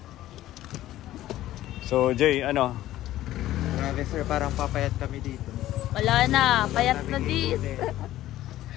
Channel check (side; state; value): right; quieter; 14.4 dB